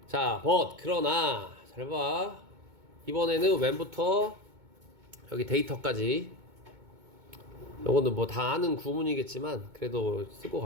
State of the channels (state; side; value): late; left; 2.2 ms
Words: 자 but 그러나 잘 봐. 이번에는 when부터 여기 데이터까지 요거는 뭐 다 아는 구문이겠지만 그래도 쓰고